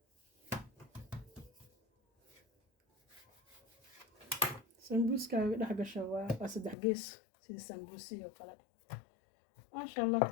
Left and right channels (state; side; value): drops out; right; at 6.8 s